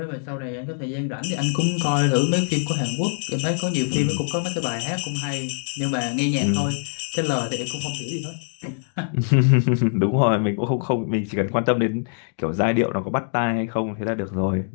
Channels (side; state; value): right; silent; digital silence